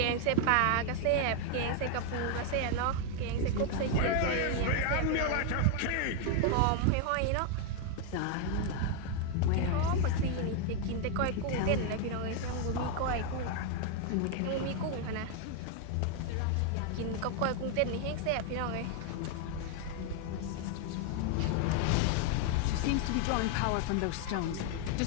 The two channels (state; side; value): different; both; correlation 0.01